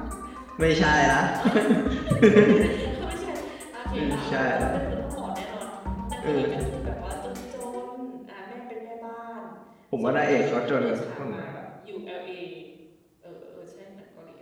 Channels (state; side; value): identical; both; correlation 1.00